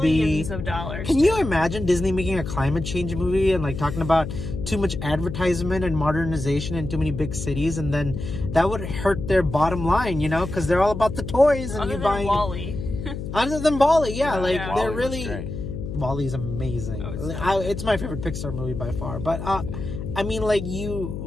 be. Millions of dollars. Can you imagine Disney making a climate change movie and like talking about too much advertisement and modernization in too many big cities, and then that would hurt their bottom line, because they're all about the toys and Other you than buying. WALL-E. Other than WALL-E, yeah, WALL-E they're was really. great. WALL-E's amazing. It's my favorite Pixar movie by far. But I mean, like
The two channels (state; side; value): noise; left; hum, 7 dB below the sound